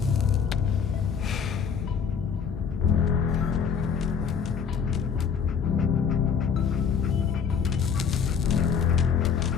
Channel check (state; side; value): quieter; right; 6.7 dB